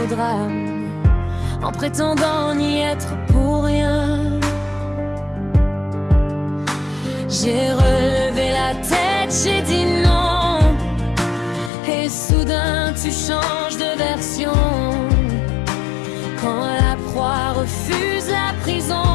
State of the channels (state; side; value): drops out; right; at 11.7 s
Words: au drame, en prétendant n'y être pour rien. J'ai relevé la tête, j'ai dit non, et soudain tu changes de version. Quand la proie refuse la